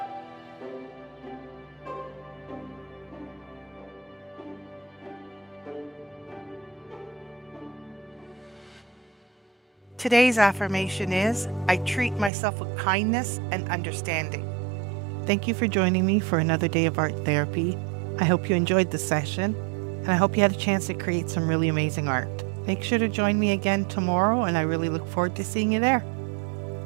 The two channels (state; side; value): drops out; left; at 12.3 s